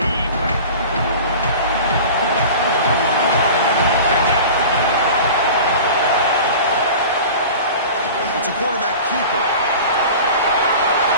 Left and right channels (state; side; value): inverted; both; correlation -0.37